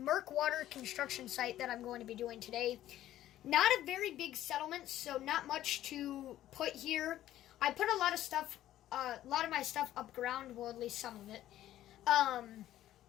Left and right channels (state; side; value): quieter; right; 13.3 dB